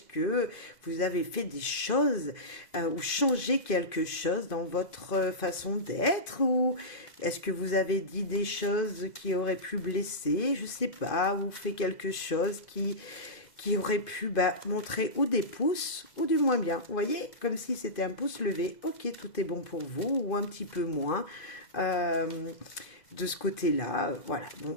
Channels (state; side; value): late; right; 2.0 ms